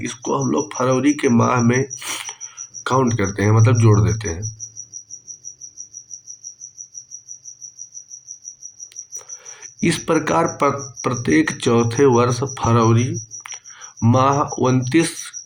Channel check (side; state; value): both; identical; correlation 1.00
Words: हम लोग फरवरी के माह में काउंट करते हैं, मतलब जोड़ देते हैं। इस प्रकार प्रत्येक चौथे वर्ष फरवरी माह 29